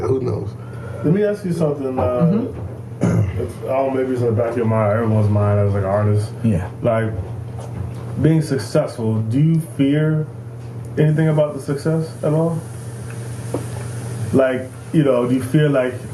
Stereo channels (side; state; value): both; identical; correlation 1.00